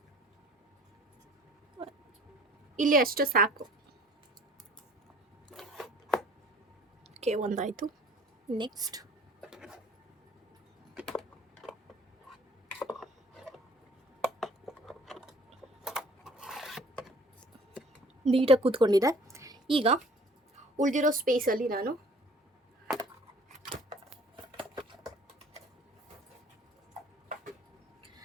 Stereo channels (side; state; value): both; normal; correlation 0.52